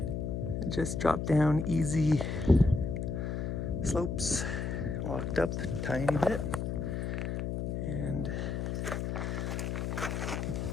it just dropped down easy slopes, walked up a tiny bit, and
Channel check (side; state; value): left; noise; hum, 2 dB below the sound